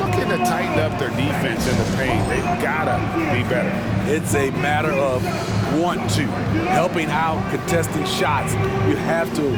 to tighten up their defense in the paint. They've got to be better. It's a matter of want to. Helping out, contesting shots. You have to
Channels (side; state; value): both; identical; correlation 1.00